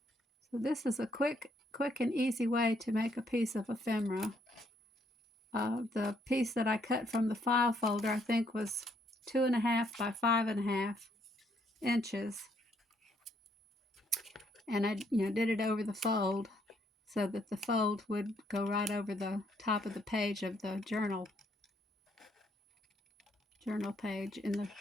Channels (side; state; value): both; normal; correlation 0.71